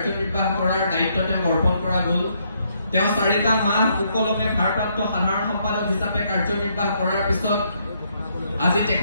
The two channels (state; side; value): inverted; both; correlation -0.73